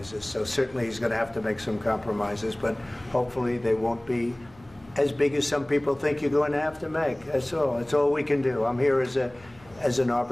So certainly he's going to have to make some compromises, but hopefully they won't be as big as some people think you're going to have to make. That's all. That's all we can do. I'm here as an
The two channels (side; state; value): left; noise; hum, 26 dB below the sound